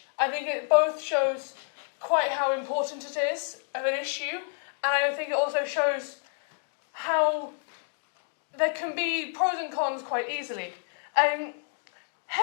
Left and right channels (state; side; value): silent; right; 59 dB below the other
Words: I think it both shows quite how important it is of an issue, and I think it also shows how there can be pros and cons quite easily.